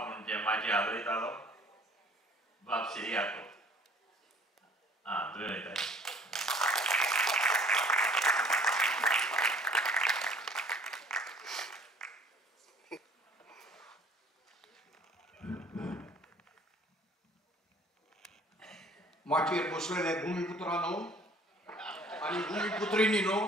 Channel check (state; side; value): normal; both; correlation 0.53